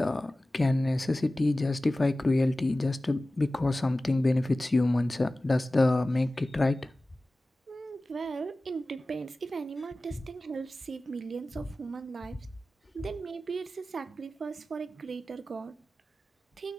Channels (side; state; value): both; normal; correlation 0.96